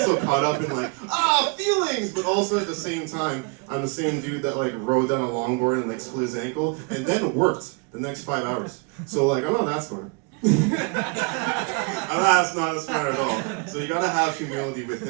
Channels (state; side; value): quieter; left; 32.7 dB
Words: caught up in like, feelings, but also at the same time, I'm the same dude that like rode down a longboard and like split his ankle and then worked the next 5 hours. So like, I'm not that smart. That's not as smart at all. So you gotta have humility